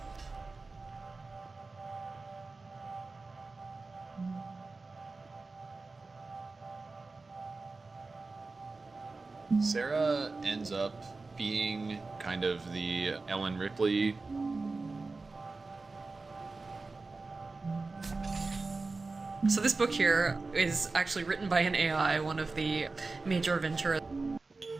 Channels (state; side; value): quieter; left; 3.7 dB